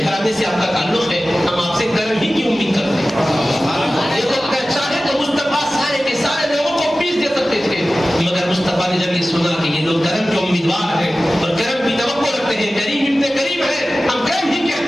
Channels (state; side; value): normal; both; correlation 0.96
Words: گھرانے سے آپ کا تعلق ہے, ہم آپ سے کرم ہی کی امید کرتے ہیں. یہ تو چاہے تو مصطفیٰ سارے کے سارے لوگوں کو پیس دے سکتے تھے, مگر مصطفیٰ نے جب یہ سنا کہ یہ لوگ کرم کے امیدوار ہیں اور کرم کی توقع رکھتے ہیں, کریم ابن کریم ہے, ہم کرم ہی کے